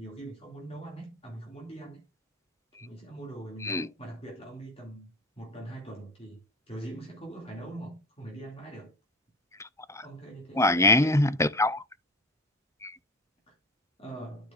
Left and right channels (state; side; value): normal; both; correlation 0.32